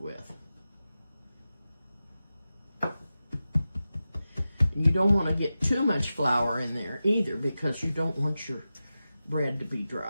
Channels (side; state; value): both; inverted; correlation -0.93